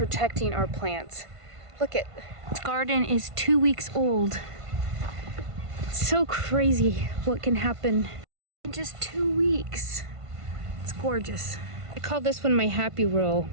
our plants. Look at this garden is 2 weeks old. It's so crazy what can happen in just 2 weeks. It's gorgeous. I call this one my happy roll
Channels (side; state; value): left; late; 1.5 ms